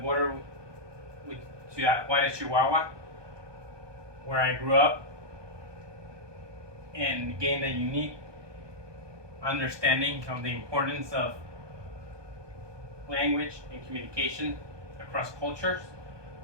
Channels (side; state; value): left; late; 1.2 ms